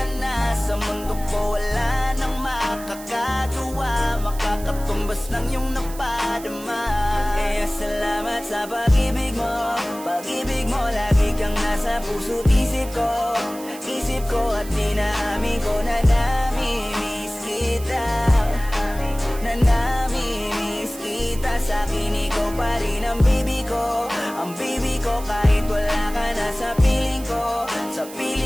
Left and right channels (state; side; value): noise; right; hiss, 16 dB below the sound